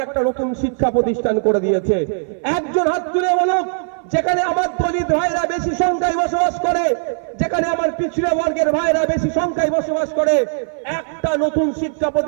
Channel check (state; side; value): silent; left; 59 dB below the other